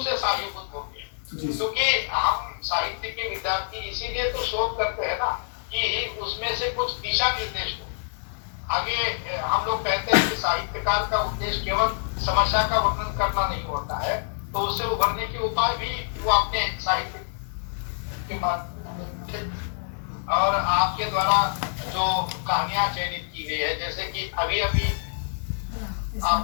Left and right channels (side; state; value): right; silent; 61 dB below the other